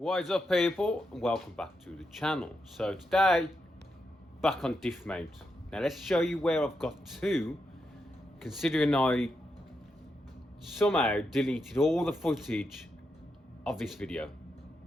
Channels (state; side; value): normal; both; correlation 0.84